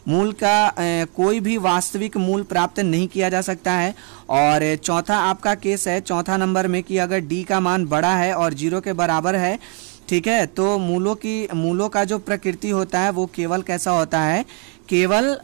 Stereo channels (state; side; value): quieter; left; 37.9 dB